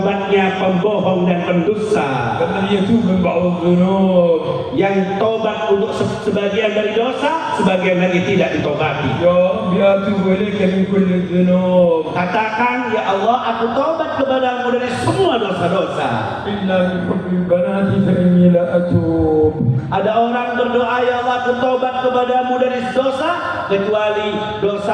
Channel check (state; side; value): identical; both; correlation 1.00